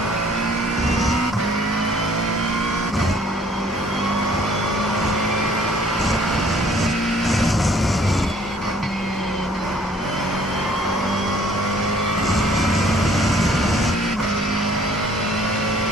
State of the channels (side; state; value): both; normal; correlation 0.58